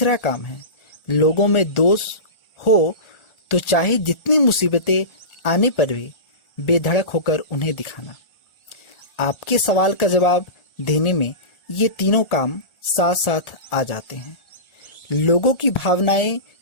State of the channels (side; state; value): right; late; 1.4 ms